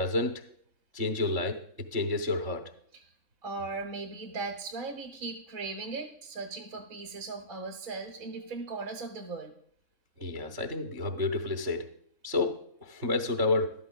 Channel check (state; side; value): late; left; 3.6 ms